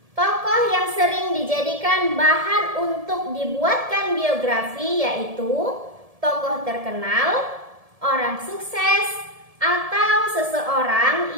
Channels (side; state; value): left; late; 1.7 ms